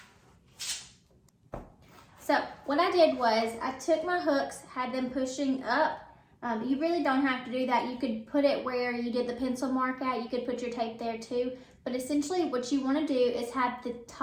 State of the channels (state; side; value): identical; both; correlation 1.00